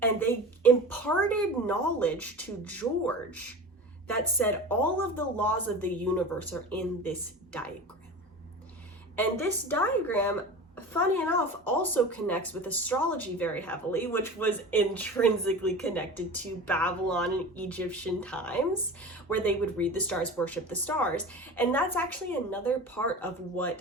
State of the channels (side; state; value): both; normal; correlation 0.33